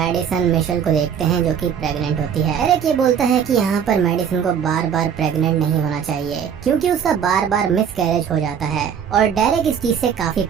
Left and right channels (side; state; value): left; quieter; 7.9 dB